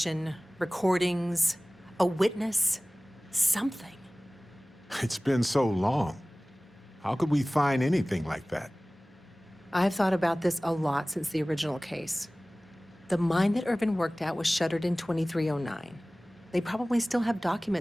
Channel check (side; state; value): both; normal; correlation 0.98